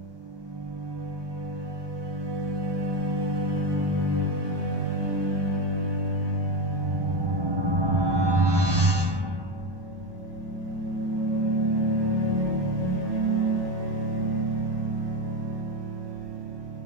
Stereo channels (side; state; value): left; late; 1.2 ms